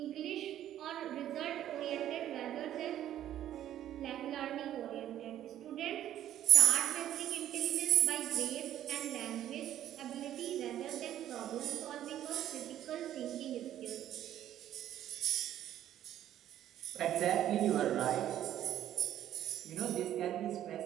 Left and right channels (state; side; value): quieter; left; 11.7 dB